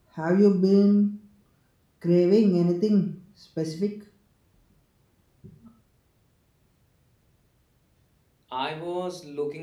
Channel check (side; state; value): both; identical; correlation 1.00